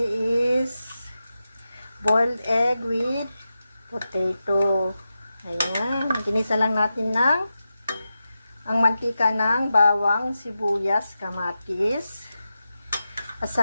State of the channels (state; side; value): inverted; both; correlation -0.91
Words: is boiled egg with potato. Ayan, ginisa lang natin ang mantika ng bawang, sibuyas, kamatis. At